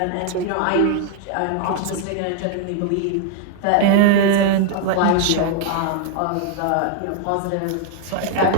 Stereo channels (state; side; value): different; both; correlation 0.00